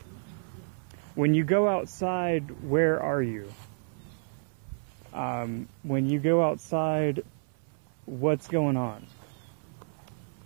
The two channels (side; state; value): left; silent; 58 dB below the other